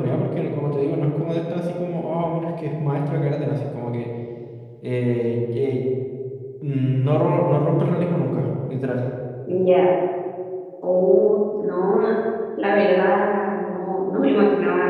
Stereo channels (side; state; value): both; identical; correlation 1.00